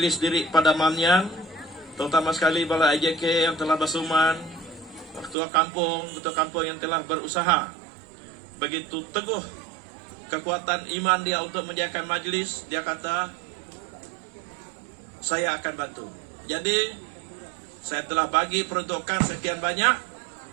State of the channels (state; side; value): drops out; left; at 5.4 s